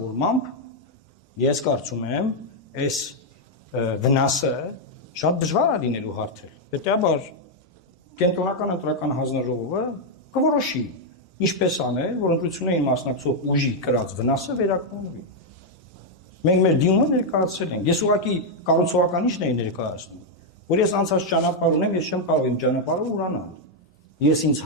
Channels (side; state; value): both; normal; correlation -0.01